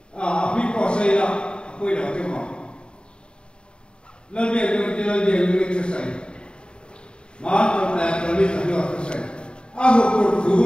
Api kuasa ila, aku ila tengok. Lebih selesai. Maaf tak lebih selesai. Aku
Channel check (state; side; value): late; right; 0.052 ms